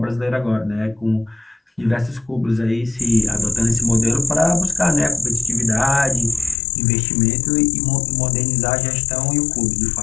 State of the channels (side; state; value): right; drops out; at 6.6 s